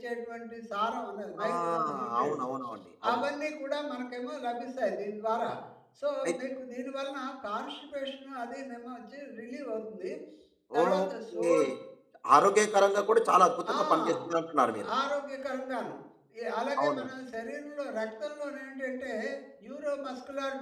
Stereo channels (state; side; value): identical; both; correlation 1.00